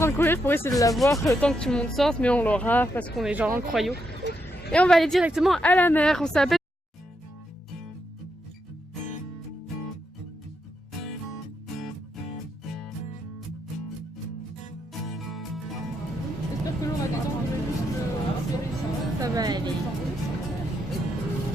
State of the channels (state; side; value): normal; both; correlation 0.80